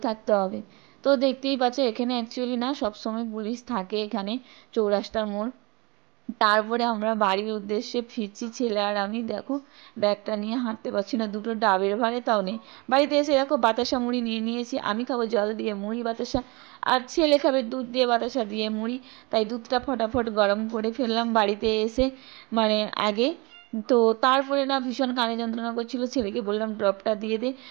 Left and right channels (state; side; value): quieter; left; 26.9 dB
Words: থাকতে হবে। তো দেখতেই পাচ্ছ এখানে অ্যাকচুয়ালি না সবসময় পুলিশ থাকে এখানে, চৌরাস্তার মোড়। তারপরে আমরা বাড়ির উদ্দেশ্যে ফিরছি ছেলে আর আমি, দেখো ব্যাগটা নিয়ে হাঁটতে পারছি না, দুটো ডাবের ভারে তাও নেই। বাড়িতে এসে দেখো বাতাসা মুড়ি নিয়ে নিয়েছি, আমি খাবো জল দিয়ে মুড়ি বাতাসা, আর ছেলে খাবে দুধ দিয়ে বাতাসা দিয়ে মুড়ি, তাই দুধটা ফটাফট গরম করে ফেললাম বাড়িতে এসে মানে আগে। তো তারপরে না ভীষণ কানে যন্ত্রণা করছিল, ছেলেকে বললাম ড্রপটা দিয়ে দে।